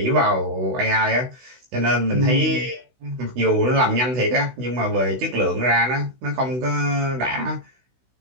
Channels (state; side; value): late; left; 16 ms